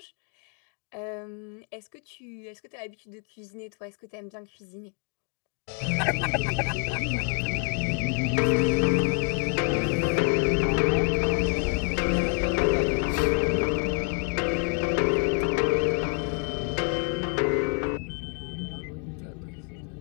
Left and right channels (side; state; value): right; quieter; 35.2 dB